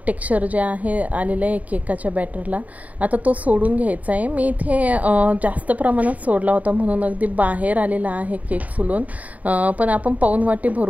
टेक्स्चर जे आहे आलेलं आहे केकाच्या बॅटरला. आता तो सोडून घ्यायचा आहे. मी इथे जास्त प्रमाणात सोडला होता म्हणून अगदी बाहेर आलेला आहे केक फुलून, पण आपण पाऊण वाटी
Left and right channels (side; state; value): left; late; 0.072 ms